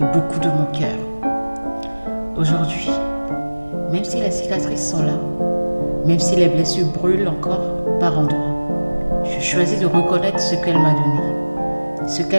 beaucoup de mon cœur. Aujourd'hui, même si les cicatrices sont là, même si les blessures brûlent encore par endroits, je choisis de reconnaître ce qu'elle m'a donné, ce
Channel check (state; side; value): inverted; both; correlation -1.00